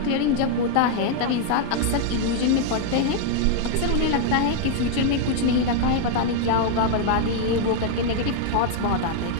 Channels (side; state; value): both; different; correlation 0.00